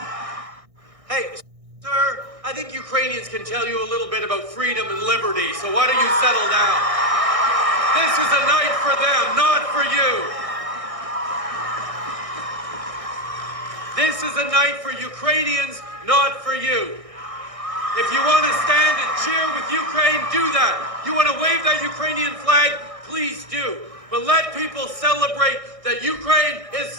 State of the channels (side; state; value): left; late; 1.6 ms